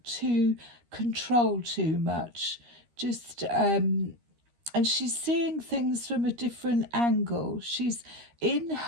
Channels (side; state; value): left; late; 13 ms